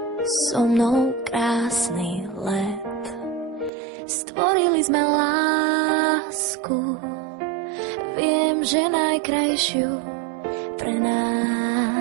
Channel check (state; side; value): drops out; left; at 3.7 s